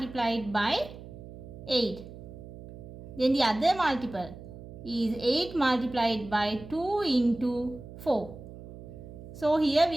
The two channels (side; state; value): right; noise; hum, 15 dB below the sound